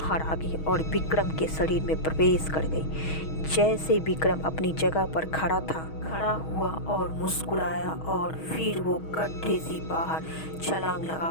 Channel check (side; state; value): right; late; 6.3 ms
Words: आ गई और विक्रम के शरीर में प्रवेश कर गई। जैसे विक्रम अपनी जगह पर खड़ा हुआ और मुस्कुराया और फिर वो गड्ढे से बाहर छलांग